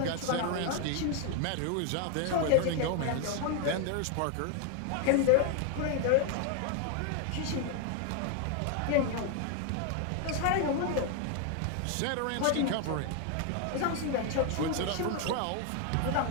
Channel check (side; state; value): both; different; correlation 0.01